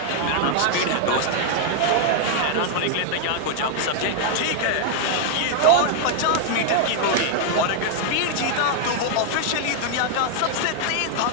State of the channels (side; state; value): both; different; correlation 0.00